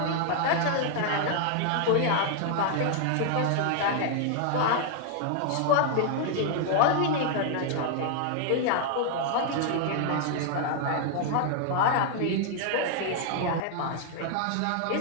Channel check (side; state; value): both; different; correlation 0.00